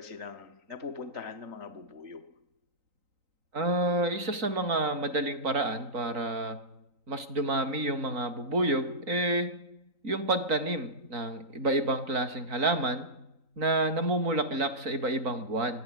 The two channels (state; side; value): late; left; 3.9 ms